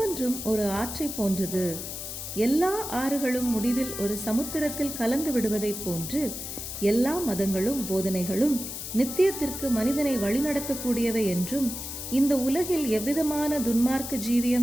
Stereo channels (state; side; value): noise; left; hiss, 7 dB below the sound